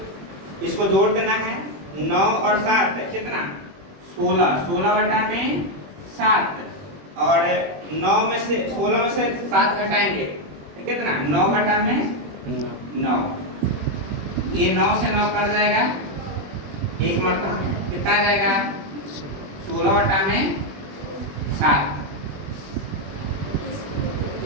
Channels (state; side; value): late; left; 21 ms